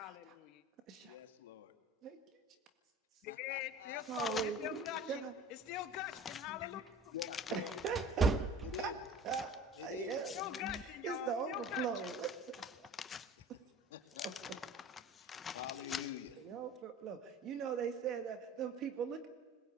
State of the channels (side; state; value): both; normal; correlation 0.43